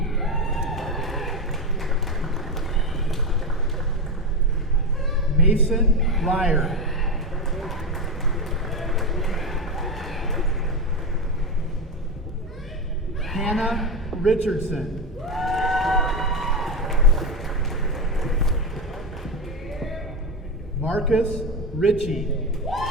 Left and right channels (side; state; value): both; normal; correlation 0.15